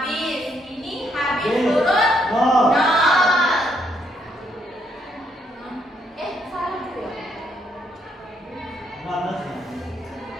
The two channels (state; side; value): normal; both; correlation 0.73